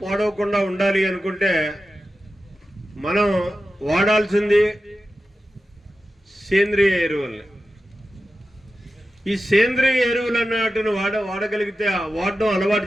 పాడవకుండా ఉండాలి అనుకుంటే మనం వాడాల్సింది సేంద్రియ ఎరువుల్ని. ఈ సేంద్రియ ఎరువులు అన్నట్టును వాడగలిగితే, వాడడం అలవాటు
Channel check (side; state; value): both; normal; correlation 0.92